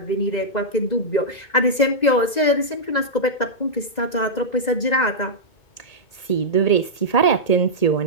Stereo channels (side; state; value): right; late; 2.0 ms